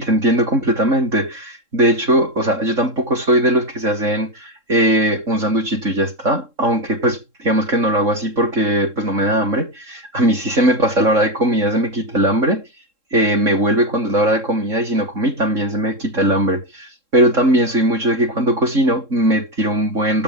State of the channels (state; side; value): late; left; 3.7 ms